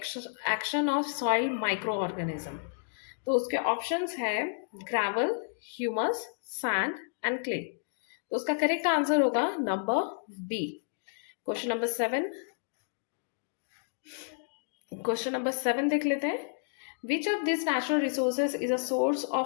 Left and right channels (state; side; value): silent; right; digital silence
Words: action of soil microorganism। तो उसके ऑप्शंस है gravel, humus, sand and clay. तो उसका करेक्ट आंसर होगा number B. Question number 7, question number 7 देख लेते हैं। Which of this natural resources is a source